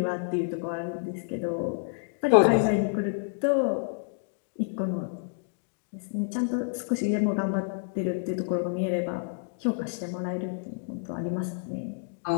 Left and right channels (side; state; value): right; silent; digital silence